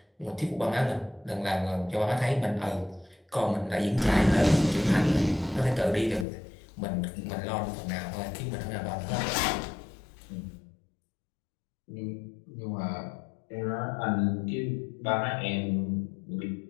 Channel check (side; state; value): right; drops out; at 6.2 s